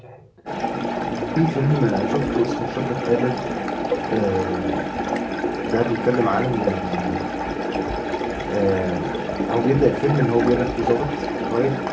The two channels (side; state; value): both; identical; correlation 1.00